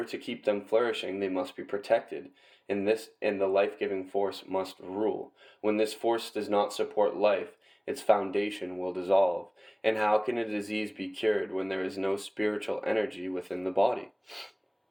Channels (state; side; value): identical; both; correlation 1.00